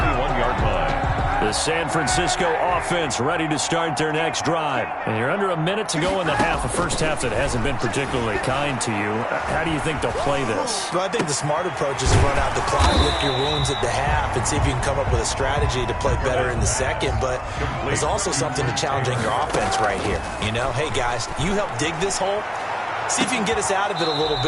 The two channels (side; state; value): both; identical; correlation 1.00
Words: line. The San Francisco offense ready to start their next drive. And you're under a minute to go in the half, a first half that hasn't been particularly kind to you. How do you think they'll play this? Well, I think the smart approach is to run out the clock, lick your wounds at the half, and see if you can come up with a strategy to play better in the second. But there's also something to challenging your offense right here. You know, hey, guys, you help dig this hole. See if you can get us out of it a little